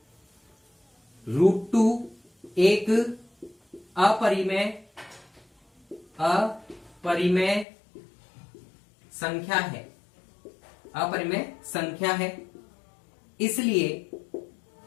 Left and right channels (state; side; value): drops out; right; at 7.7 s